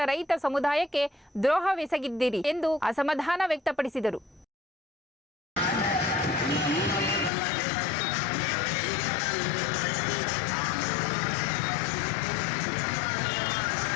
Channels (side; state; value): right; drops out; at 7.3 s